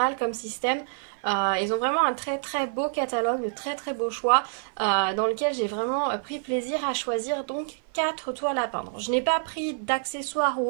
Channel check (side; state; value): left; silent; 57 dB below the other